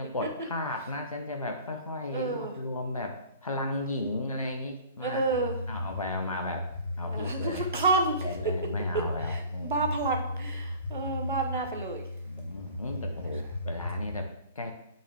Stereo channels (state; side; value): inverted; both; correlation -0.46